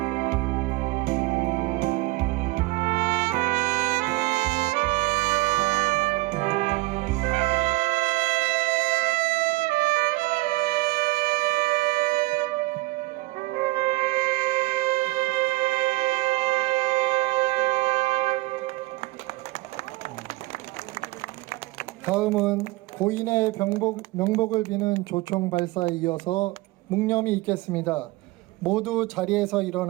다음은 고인의 명복을 비는 조총 발사에 이어서 묵념이 있겠습니다. 모두 자리에서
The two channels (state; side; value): quieter; left; 20.6 dB